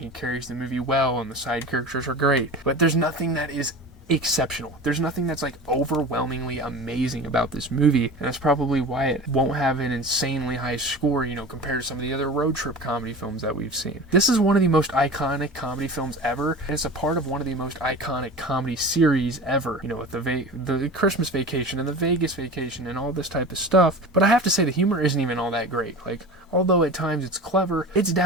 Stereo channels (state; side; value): normal; both; correlation 0.34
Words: carries the movie well, and the side characters are great. But there's nothing that is exceptional. There's nothing that's like overwhelmingly amazing about this movie, and that's probably why it won't have an insanely high score, you know, compared to some of the other road trip comedy films that we've seen. This is one of the most iconic comedy films ever, and it's a part of one of the most iconic comedy series ever, you know, with the Christmas Vacation and the Vegas Vacation and all this type of stuff. But I have to say the humor isn't even all that great. Like, although at times it's clever, it's